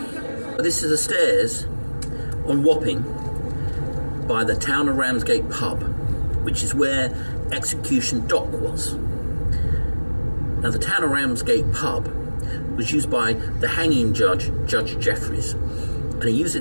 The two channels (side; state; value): both; inverted; correlation -1.00